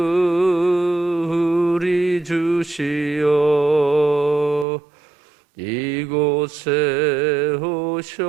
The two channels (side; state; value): left; drops out; at 4.7 s